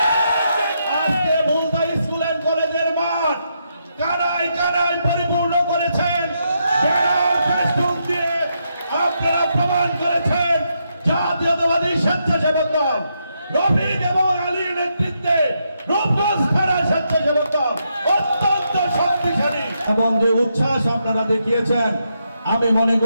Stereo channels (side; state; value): both; inverted; correlation -0.80